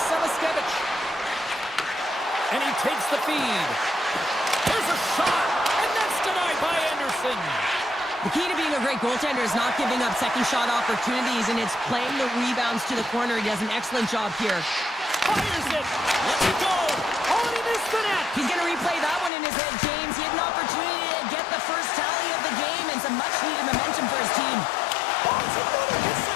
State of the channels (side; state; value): right; drops out; at 19.3 s